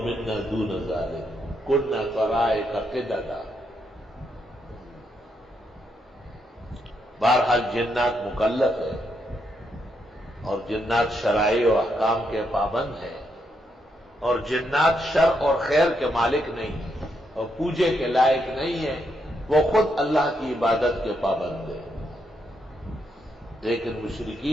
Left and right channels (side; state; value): both; normal; correlation 0.79